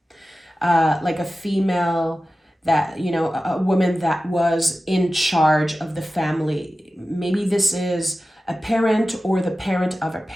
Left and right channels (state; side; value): normal; both; correlation 0.95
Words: Like a female that, a woman that was in charge of the family. Maybe this is a parent or the parent of a